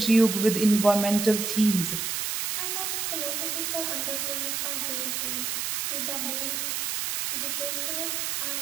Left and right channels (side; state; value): right; noise; hiss, 1 dB below the sound